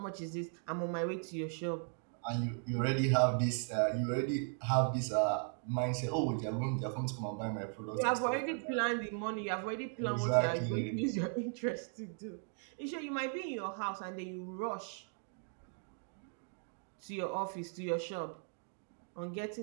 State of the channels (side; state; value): left; silent; 53 dB below the other